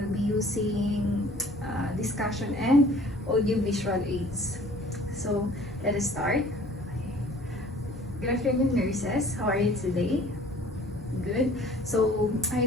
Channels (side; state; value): both; normal; correlation 0.51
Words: be using discussion and audio-visual aids. So let us start. Good afternoon, nurses. How are you today? Good. So I